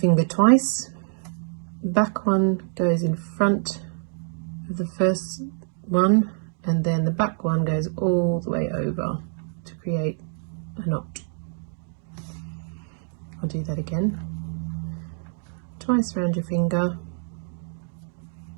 twice. The back one goes in front of the first one, and then the back one goes all the way over to create a knot. I'll do that again. Twice around your finger,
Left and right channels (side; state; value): left; silent; 58 dB below the other